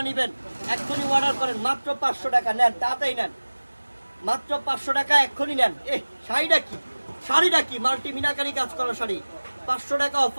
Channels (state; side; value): inverted; both; correlation -1.00